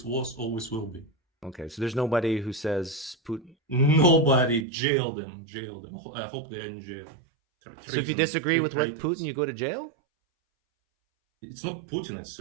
was, always will be. Okay, so there's nobody who says Putin. Nobody. Jail them. I hope they're in jail. So if you disagree with what Putin, you go to jail? It's not Putin. It's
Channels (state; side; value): drops out; left; at 4.7 s